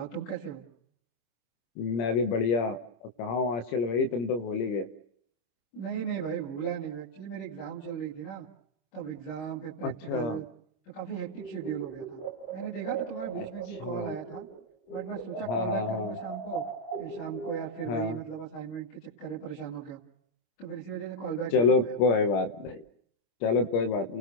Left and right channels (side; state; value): right; late; 26 ms